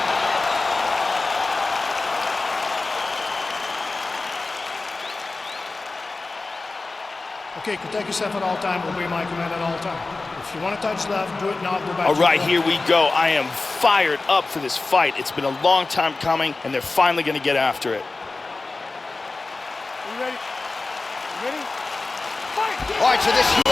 Okay, protect yourself at all time, obey my command at all time. If you want to touch left, do it now, go back. All right, here we go. I am fired up for this fight. It's been a long time coming, and they're finally going to get after it. Are you ready? You ready? Fight! All right, so this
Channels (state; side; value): quieter; right; 3.5 dB